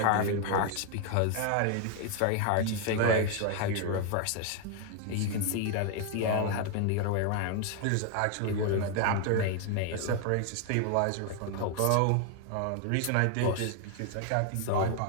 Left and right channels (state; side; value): different; both; correlation 0.00